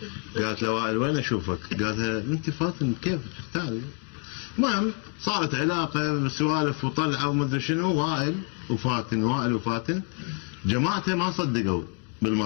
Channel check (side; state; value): right; quieter; 38.4 dB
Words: قالت له وائل وين اشوفك؟ قال انت فاتن كيف اختاري؟ المهم صارت علاقه سوالف وطلعه ومدري شنو، وائل وفاتن جماعته ما صدقوا